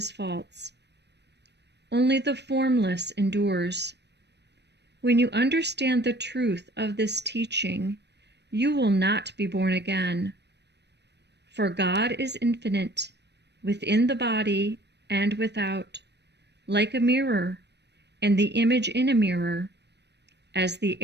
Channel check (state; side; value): late; left; 0.50 ms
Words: false. Only the formless endures. When you understand the truth of this teaching, you will not be born again. For God is infinite, within the body and without, like a mirror, and the image in a mirror. As the